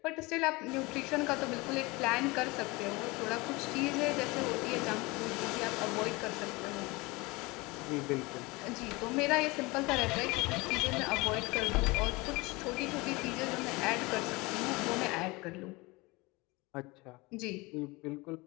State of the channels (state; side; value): quieter; right; 24.0 dB